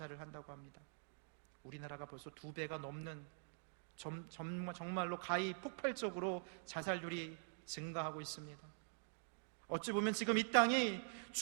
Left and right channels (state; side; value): silent; left; digital silence